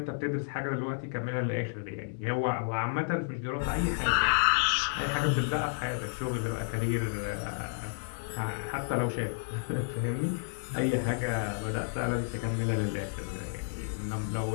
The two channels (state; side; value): silent; right; digital silence